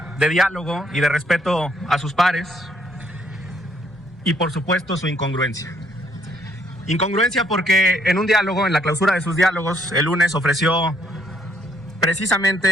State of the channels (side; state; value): both; normal; correlation 0.69